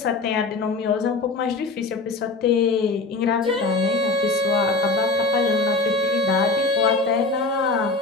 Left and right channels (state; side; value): quieter; right; 3.5 dB